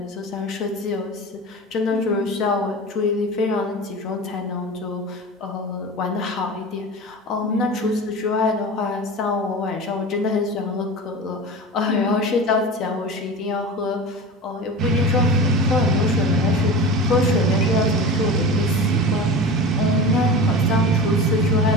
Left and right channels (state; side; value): normal; both; correlation 0.31